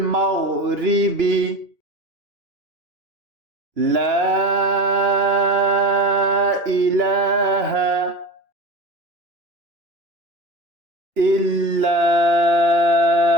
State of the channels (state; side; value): late; left; 2.9 ms